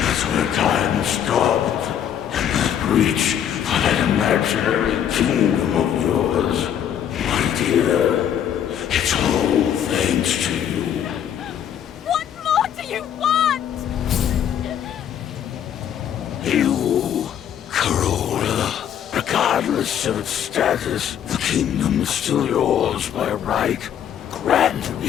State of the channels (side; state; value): right; quieter; 9.5 dB